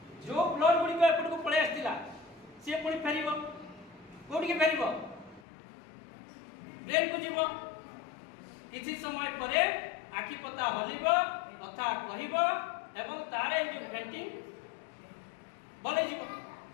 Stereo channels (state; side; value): drops out; right; at 5.4 s